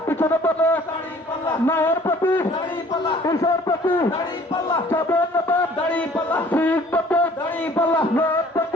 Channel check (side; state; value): both; normal; correlation 0.54